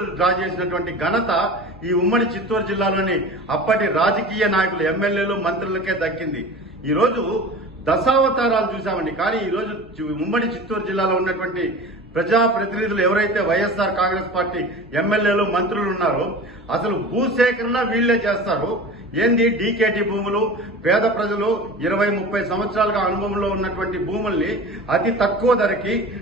డ్రా చేసినటువంటి ఘనత ఈ ఉమ్మడి చిత్తూరు జిల్లాలోని అప్పటి రాజకీయ నాయకులు, ఎమ్మెల్యేలు, మంత్రులకే దక్కింది. ఈ రోజు దశావతారాలు చూశామండి. కానీ ఈ రోజు ఉమ్మడి చిత్తూరు జిల్లాలో ఉన్నటువంటి ప్రజాప్రతినిధులు ఎవరైతే వైఎస్ఆర్ కాంగ్రెస్ పార్టీ ఎమ్మెల్యేలు, మంత్రులు ఉన్నారో అసలు భూసేకరణ వీళ్లే చేస్తారు. ఏంది డీకేటీ భూములు, పేద ప్రజలు 20-30 సంవత్సరాలుగా అనుభవంలో ఉన్నటువంటి భూముల్ని అతి తక్కువ ధరకి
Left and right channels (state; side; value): normal; both; correlation 0.35